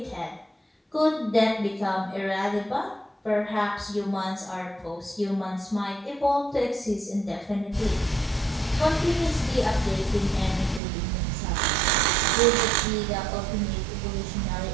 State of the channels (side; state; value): left; drops out; at 10.8 s